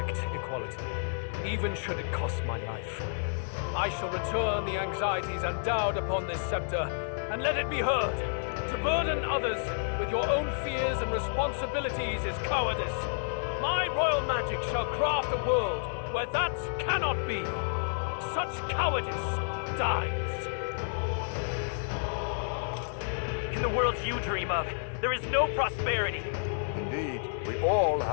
equality, even should it cost my life. I shall return the anxieties endowed upon this scepter, and let it be heard. To burden others with your own fears and responsibilities is cowardice. My royal magic shall craft a world where that cannot be. Such cowardice dies. In the world you dream of, there is no prosperity. Indeed, we all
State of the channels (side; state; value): right; silent; digital silence